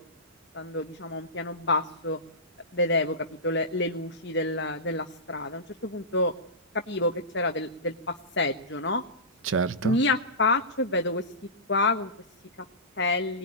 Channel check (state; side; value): normal; both; correlation -0.19